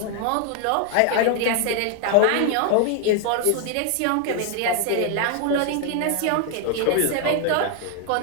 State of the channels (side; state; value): both; different; correlation 0.00